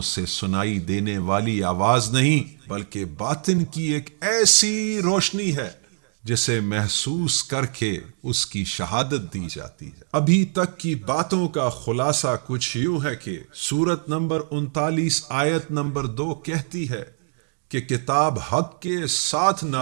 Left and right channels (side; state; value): left; silent; 63 dB below the other